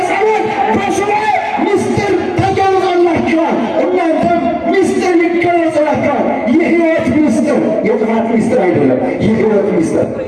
በሱባዔ ምስጢር ተገልጾላቸዋል። እናንተም ምስጢር ይገለጽላቸዋል። የሕይወት ምስጢር፣ የጥፋት ምስጢር አይደለም። የሕይወት ምስጢር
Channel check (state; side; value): identical; both; correlation 1.00